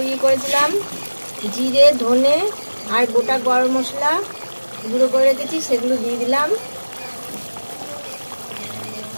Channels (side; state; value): both; inverted; correlation -1.00